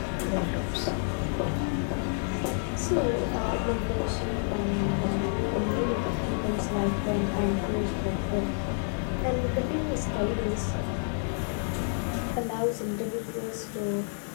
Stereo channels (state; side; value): silent; right; 58 dB below the other